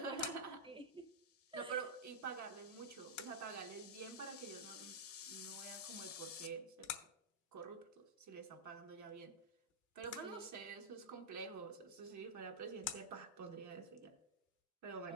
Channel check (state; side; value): normal; both; correlation -0.09